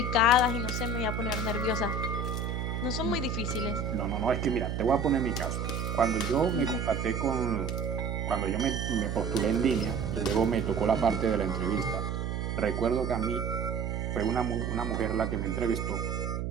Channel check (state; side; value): noise; right; hum, 2 dB below the sound